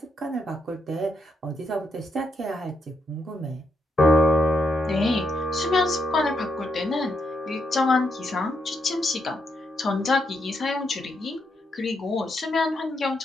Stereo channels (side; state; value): both; normal; correlation 0.79